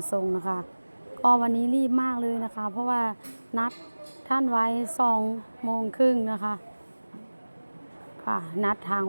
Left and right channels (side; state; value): both; inverted; correlation -1.00